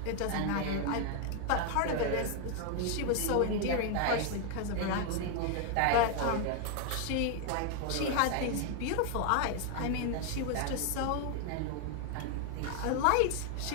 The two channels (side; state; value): both; different; correlation 0.00